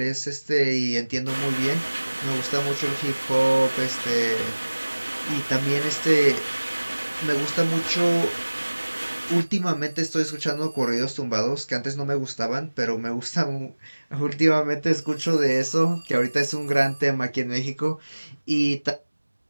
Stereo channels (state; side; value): inverted; both; correlation -1.00